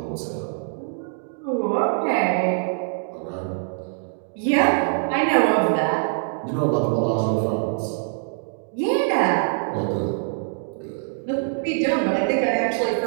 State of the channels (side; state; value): left; silent; digital silence